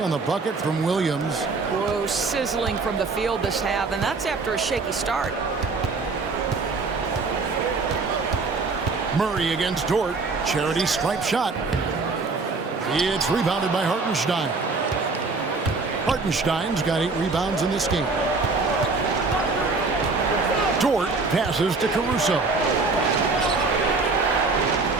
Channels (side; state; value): left; quieter; 4.0 dB